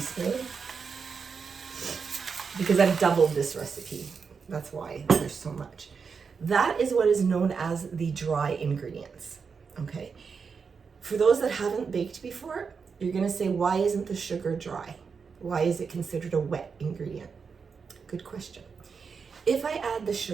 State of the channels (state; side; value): quieter; left; 5.6 dB